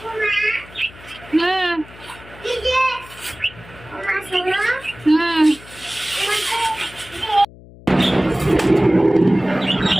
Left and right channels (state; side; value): noise; left; hum, 21 dB below the sound